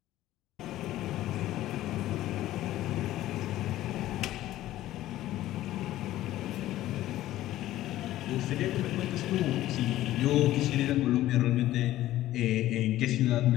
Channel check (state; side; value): quieter; right; 14.6 dB